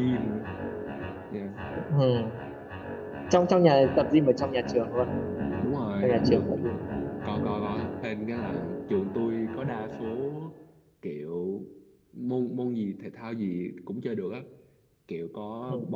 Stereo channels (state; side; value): identical; both; correlation 1.00